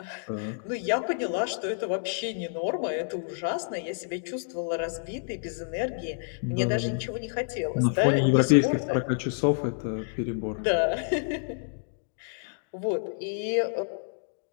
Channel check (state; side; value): silent; right; digital silence